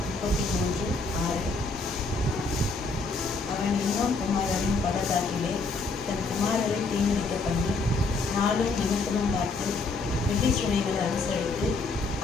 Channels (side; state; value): right; quieter; 3.8 dB